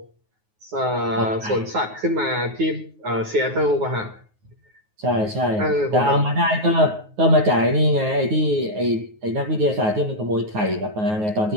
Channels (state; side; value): late; left; 9.4 ms